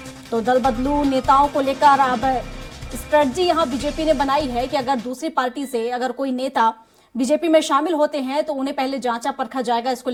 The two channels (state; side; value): identical; both; correlation 1.00